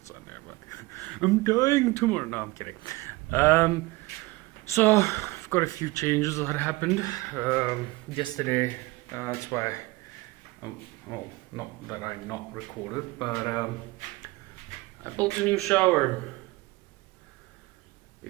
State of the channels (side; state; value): left; quieter; 21.5 dB